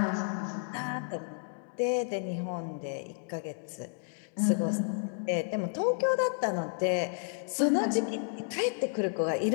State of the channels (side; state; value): right; silent; 57 dB below the other